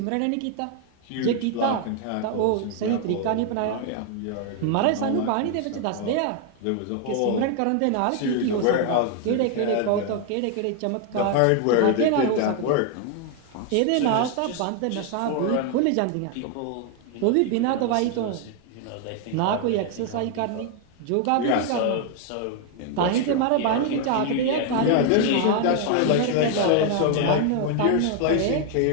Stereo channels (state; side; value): different; both; correlation 0.00